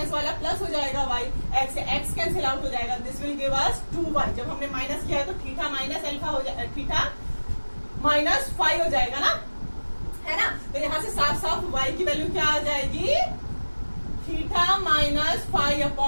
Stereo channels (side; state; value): both; inverted; correlation -1.00